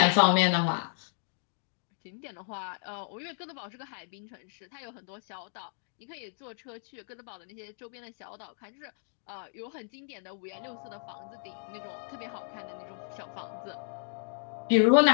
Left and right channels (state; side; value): silent; right; digital silence